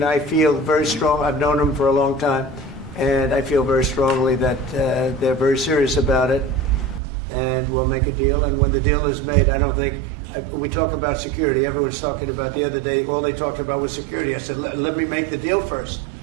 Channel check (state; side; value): drops out; left; at 7.0 s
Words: feel very strong. I've known him for a long time, and I feel very strongly that they're very serious about it, and we'll make a deal. And when the deal is made, I don't think we talk about security. Everyone's talking about the other day. All they talked about was security. I said, let me make the deal first.